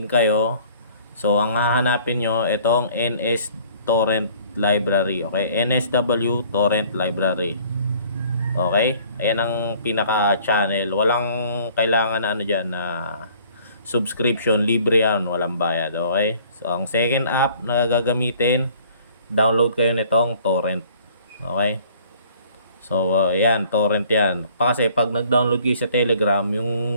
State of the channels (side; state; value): both; inverted; correlation -0.56